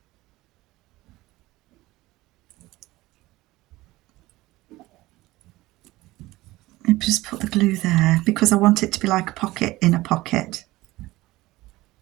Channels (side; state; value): left; quieter; 18.6 dB